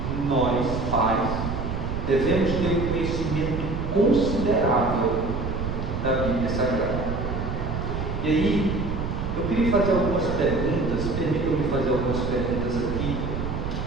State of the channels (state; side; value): noise; right; rumble, 3 dB below the sound